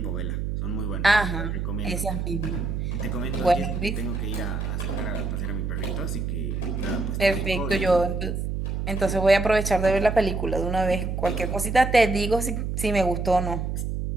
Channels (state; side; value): noise; right; hum, 2 dB below the sound